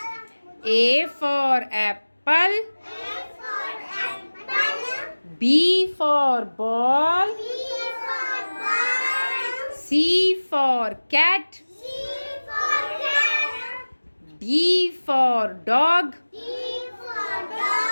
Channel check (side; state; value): both; inverted; correlation -1.00